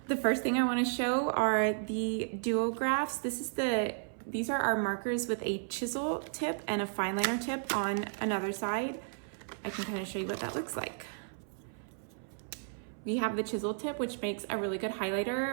The first thing I want to show are the duographs. These are our markers with a chisel tip and a fine liner tip on another side. I can kind of show you what that looks like. We have the chisel tip, which makes a really good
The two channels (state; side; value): silent; left; 55 dB below the other